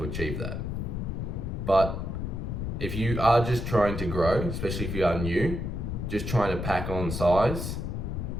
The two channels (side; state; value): left; noise; rumble, 3 dB below the sound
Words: achieve that. But if you are just trying to grow, especially if you are new, just trying to pack on size,